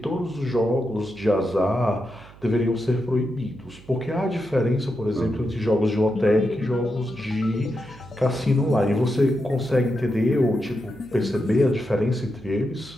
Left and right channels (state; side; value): noise; right; hum, 22 dB below the sound